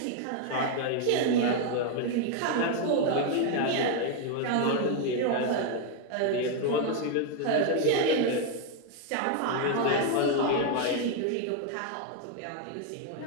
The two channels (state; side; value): different; both; correlation 0.01